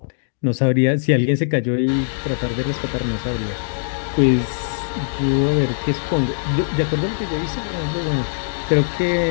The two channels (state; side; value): silent; right; digital silence